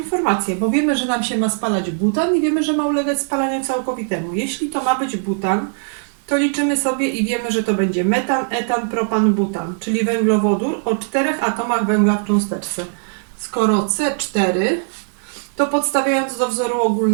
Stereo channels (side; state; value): left; silent; digital silence